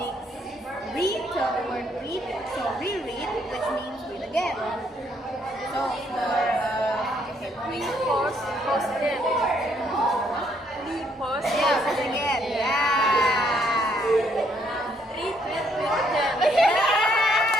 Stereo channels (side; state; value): both; normal; correlation 0.70